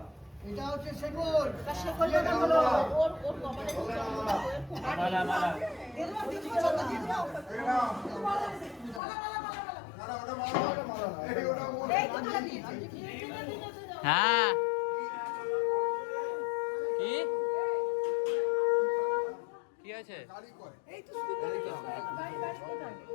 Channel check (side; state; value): right; drops out; at 9.0 s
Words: এটা হচ্ছে শেকল। তা শেকল যেটা হলো ওর কপালে মালা মালা হ্যাঁ। কি কি আছে?